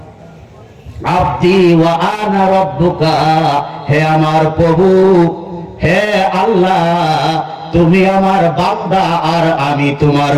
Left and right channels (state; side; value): identical; both; correlation 1.00